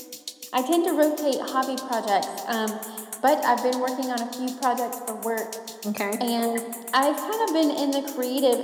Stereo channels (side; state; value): both; identical; correlation 1.00